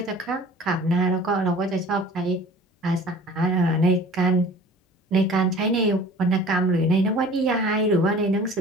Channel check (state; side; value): normal; both; correlation 0.45